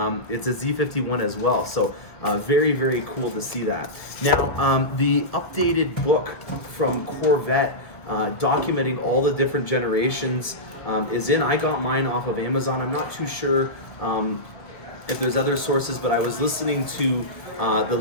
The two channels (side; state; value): right; late; 1.5 ms